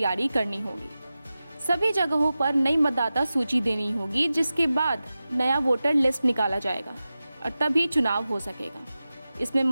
करनी होगी। सभी जगहों पर नई मतदाता सूची देनी होगी, जिसके बाद नया वोटर लिस्ट निकाला जाएगा और तभी चुनाव हो सकेगा। इसमें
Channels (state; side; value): inverted; both; correlation -0.94